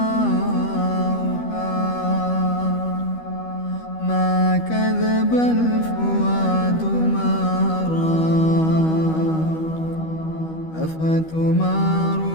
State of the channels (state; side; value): late; right; 12 ms